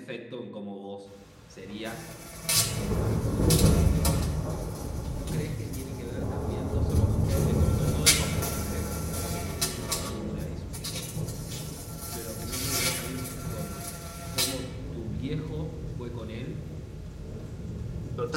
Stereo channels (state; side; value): identical; both; correlation 1.00